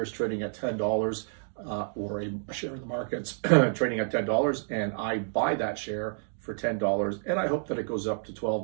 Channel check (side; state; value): left; silent; digital silence